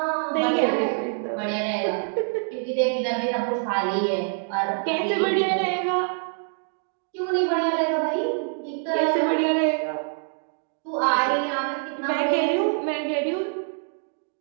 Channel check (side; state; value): left; silent; 58 dB below the other